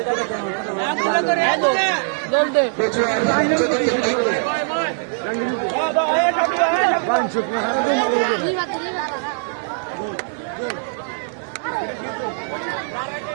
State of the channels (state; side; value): silent; left; digital silence